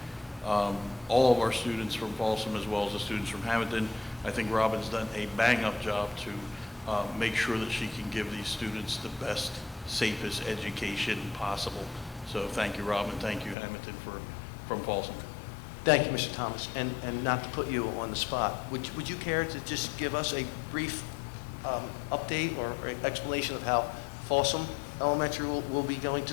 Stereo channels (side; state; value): right; drops out; at 13.6 s